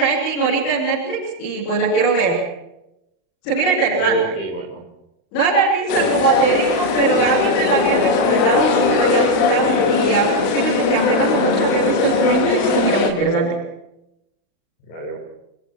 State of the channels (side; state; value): right; late; 35 ms